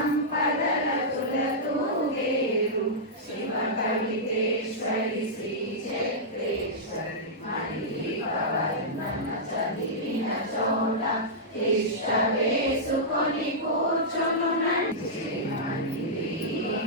తులతూగేరు శివ కలితేశ్వరి శ్రీ చక్రేశ్వరి మణివర్ణన చదివిన చోట ఇష్ట వేసుకొని కూర్చును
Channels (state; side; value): normal; both; correlation -0.11